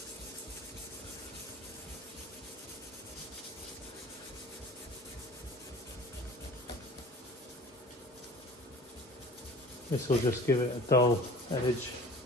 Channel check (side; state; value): both; normal; correlation 0.44